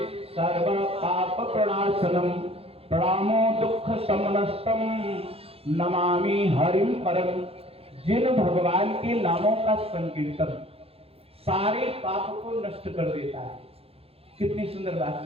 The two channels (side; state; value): left; late; 0.28 ms